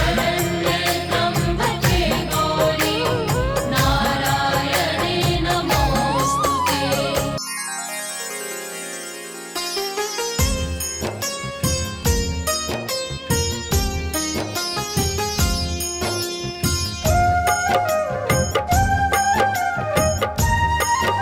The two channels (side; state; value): both; identical; correlation 1.00